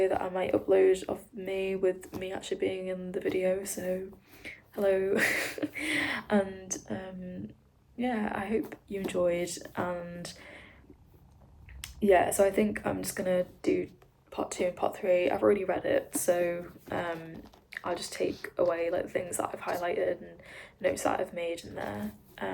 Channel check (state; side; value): identical; both; correlation 1.00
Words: that I might upload of me, with me actually being in the video, so hello. And yeah, I hope you enjoyed, and yeah, so I think I'm just gonna do part 2 and part 3. I've already read it, so I'll just take away like things that I've highlighted and notes that I've made in there.